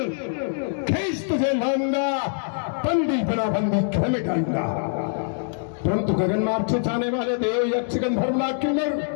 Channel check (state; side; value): silent; right; 63 dB below the other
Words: खींच तुझे लाऊंगा। बंदी बना बंदी घर में डालूंगा। परंतु गगन मार्ग से जाने वाले देव यक्ष गंधर्वनाग किन्नर